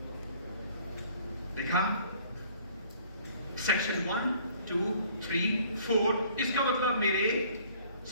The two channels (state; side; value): inverted; both; correlation -0.56